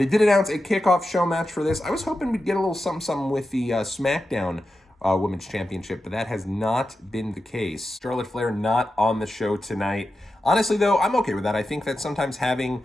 did announce a kickoff show match for this. I was hoping we'd get a little something with the SmackDown Women's Championship, but that has not been the case. Charlotte Flair not on the show tonight. Honestly, though, I'm okay with that. I think that sometimes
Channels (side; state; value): both; normal; correlation 0.91